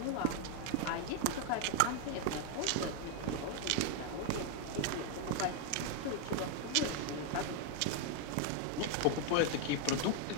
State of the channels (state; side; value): different; both; correlation 0.01